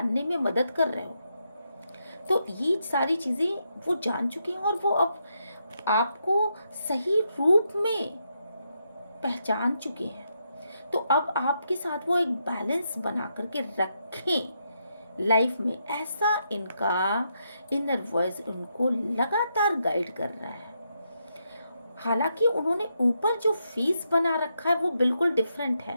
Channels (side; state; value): both; inverted; correlation -0.81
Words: में मदद कर रहे हो। तो ये सारी चीज़ें वो जान चुके हैं और वो अब आपको सही रूप में पहचान चुके हैं। तो अब आपके साथ वो एक बैलेंस बना करके रखें लाइफ में, ऐसा इनका इनर वॉइस उनको लगातार गाइड कर रहा है। हालांकि उन्होंने ऊपर जो फीस बना रखा है वो बिल्कुल डिफरेंट